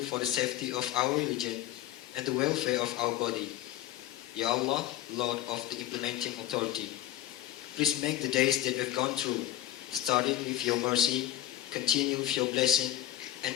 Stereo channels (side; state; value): right; quieter; 13.2 dB